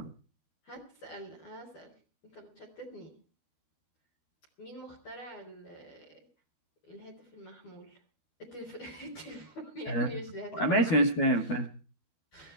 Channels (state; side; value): late; right; 12 ms